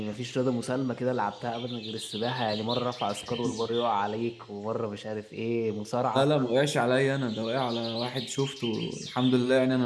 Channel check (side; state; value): both; identical; correlation 1.00